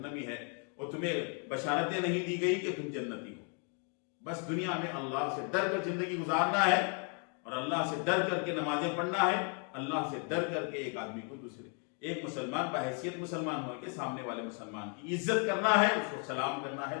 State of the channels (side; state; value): right; quieter; 40.0 dB